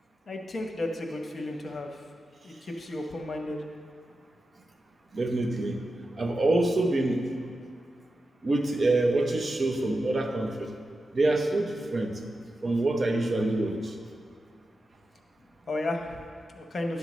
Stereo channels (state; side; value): normal; both; correlation 0.91